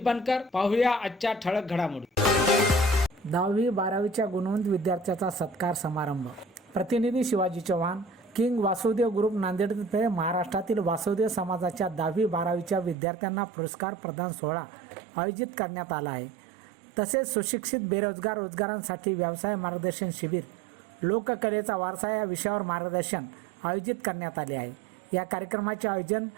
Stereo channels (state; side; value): drops out; left; at 13.0 s